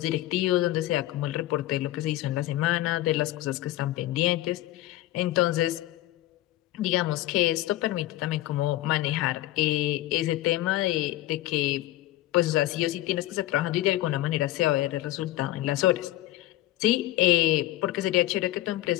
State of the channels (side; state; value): right; quieter; 16.0 dB